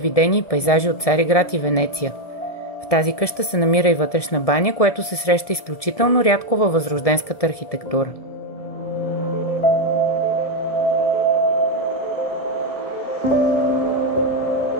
и пейзажи от Цариград и Венеция. В тази къща се намира и вътрешна баня, което се среща изключително рядко във възрожденската архитектура.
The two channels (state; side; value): late; right; 1.7 ms